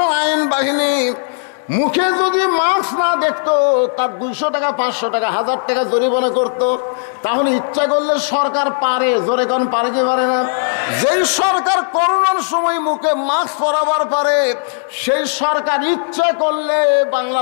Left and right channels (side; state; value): right; silent; digital silence